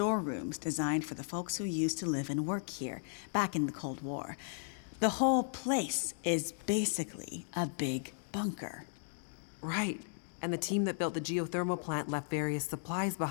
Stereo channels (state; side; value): silent; right; digital silence